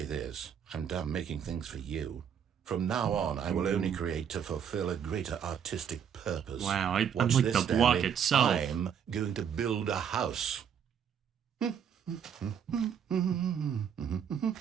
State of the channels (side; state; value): left; quieter; 8.1 dB